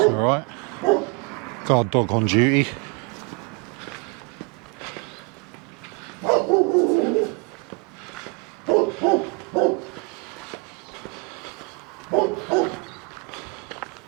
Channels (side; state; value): left; quieter; 31.2 dB